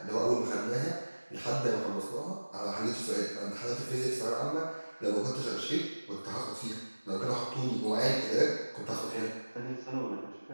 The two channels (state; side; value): inverted; both; correlation -1.00